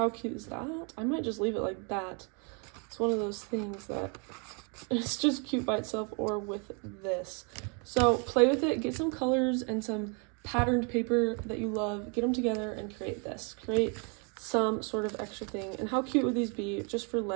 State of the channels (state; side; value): quieter; left; 35.9 dB